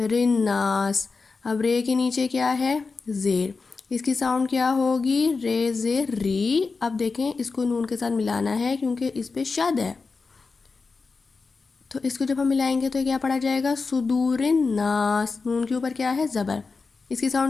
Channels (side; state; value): right; quieter; 4.4 dB